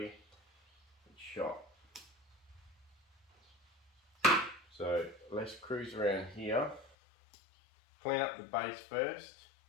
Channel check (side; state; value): right; drops out; at 7.0 s